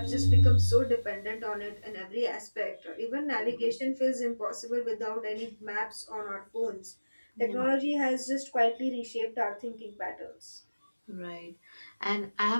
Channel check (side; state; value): both; inverted; correlation -1.00